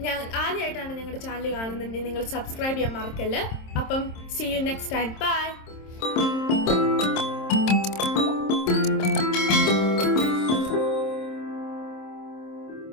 ഞാൻ ആദ്യമായിട്ടാണ് ഞങ്ങളുടെ ചാനൽ കാണുന്നുണ്ടെങ്കിൽ നിങ്ങൾ സബ്സ്ക്രൈബ് ചെയ്യാൻ മറക്കല്ല്. അപ്പം see you next time. By.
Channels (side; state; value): right; late; 26 ms